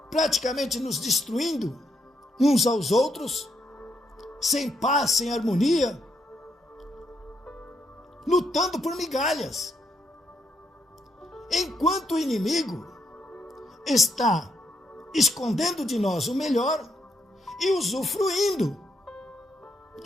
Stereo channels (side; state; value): both; normal; correlation 0.77